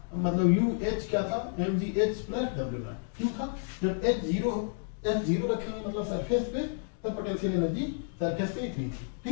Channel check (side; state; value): right; silent; digital silence